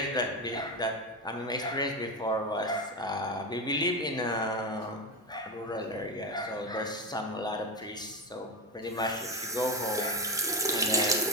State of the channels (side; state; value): both; normal; correlation 0.17